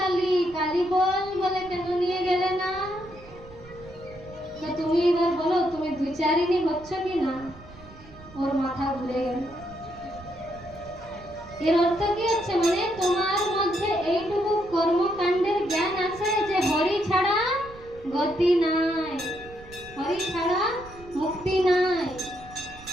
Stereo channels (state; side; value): noise; right; rumble, 20 dB below the sound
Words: কালী বল বলে কেন নিয়ে গেলে না? তো তুমি এবার বলো তুমি দ্বিচারিণী হচ্ছ কি না? ওর মাথা ঘুরে গেল। এর অর্থ কি হচ্ছে, মানে তোমার মধ্যে এইটুকু কর্মকাণ্ডের জ্ঞান আছে যে হরি ছাড়া গতি নাই, হরি ছাড়া মুক্তি নাই।